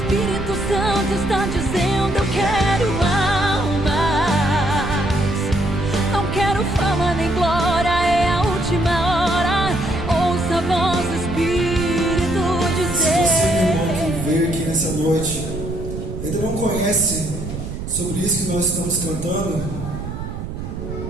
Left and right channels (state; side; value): noise; right; rumble, 7 dB below the sound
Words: Santo está dizendo: eu quero almas. Não quero fama nem glória, é a última hora. Ouça a voz do Espírito dizer. Se você, meu irmão, que veio aqui nessa noite, ainda não conhece sobre isso que nós estamos cantando,